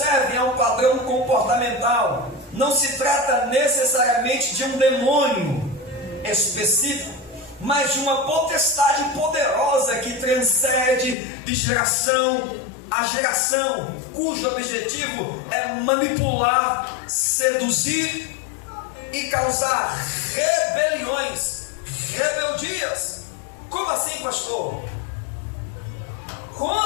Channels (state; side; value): drops out; right; at 11.2 s